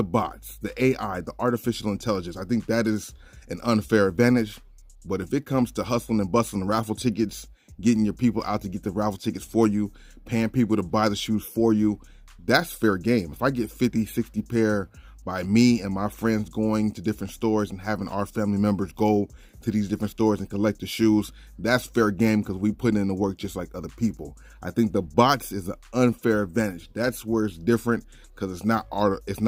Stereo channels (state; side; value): identical; both; correlation 1.00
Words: bots, the AI, the artificial intelligence. I think that is an unfair advantage. But if it comes to hustling and bustling raffle tickets, getting your people out to get the raffle tickets for you, paying people to buy the shoes for you, that's fair game. If I get 50, 60 pair by me and my friends going to different stores and having our family members go to these different stores and collect the shoes, that's fair game because we put in the work just like other people. I think the bots is an unfair advantage. That's where it's different because it's not